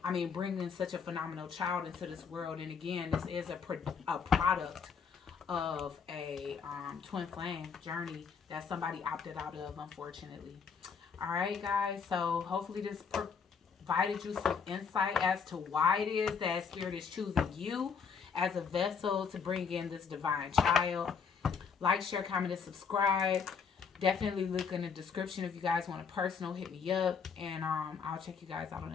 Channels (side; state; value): right; quieter; 6.1 dB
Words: Bringing such a phenomenal child into this world. And again, this is a product of a twin flame journey that somebody opted out of, unfortunately. All right, guys. So hopefully this provided you some insight as to why it is that Spirit is choosing you as a vessel to bring in this divine child. Like, share, comment, and subscribe. Definitely look in the description if you guys want a personal. Hit me up. And I'll check you guys out on